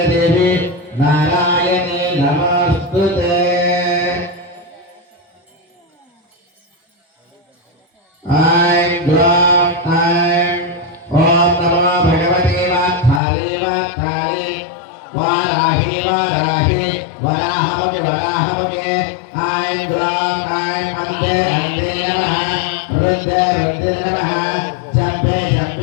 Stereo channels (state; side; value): drops out; right; at 13.2 s